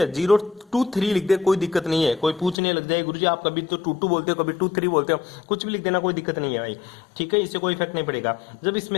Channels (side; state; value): right; drops out; at 2.6 s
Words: 023 लिख दे कोई दिक्कत नहीं है। कोई पूछने लग जाए गुरुजी आप कभी तो 22 बोलते हो कभी 23 बोलते हो, कुछ भी लिख देना कोई दिक्कत नहीं है भाई। ठीक है, इससे कोई इफेक्ट नहीं पड़ेगा। जब